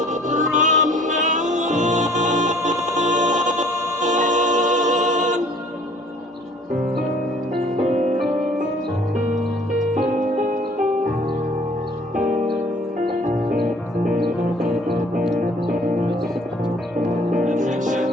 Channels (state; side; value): normal; both; correlation 0.55